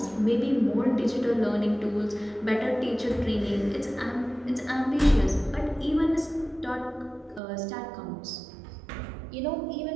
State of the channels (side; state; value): left; drops out; at 7.4 s